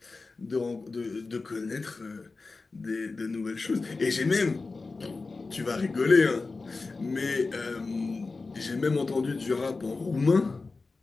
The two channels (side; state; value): right; quieter; 3.9 dB